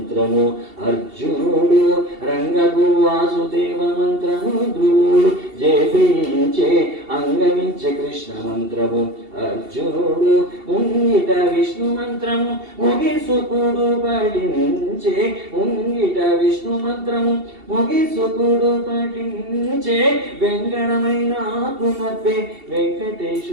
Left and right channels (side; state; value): left; late; 2.7 ms